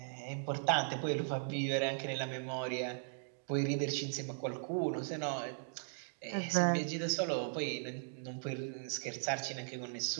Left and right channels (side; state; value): left; silent; digital silence